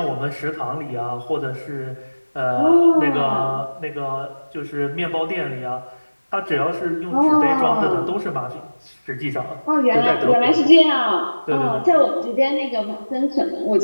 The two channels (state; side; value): inverted; both; correlation -1.00